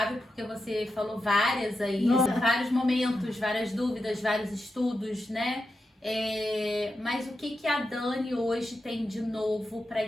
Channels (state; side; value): normal; both; correlation 0.88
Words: porque você falou várias aí, vários momentos, várias dúvidas, vários estudos, né? Mas o que a Dani hoje tem de novo para